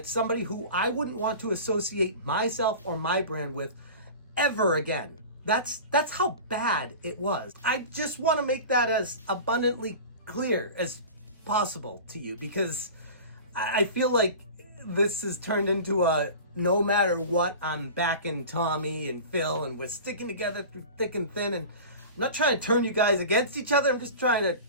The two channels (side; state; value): both; inverted; correlation -0.35